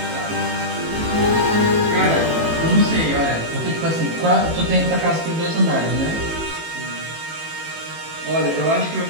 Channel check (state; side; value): late; left; 18 ms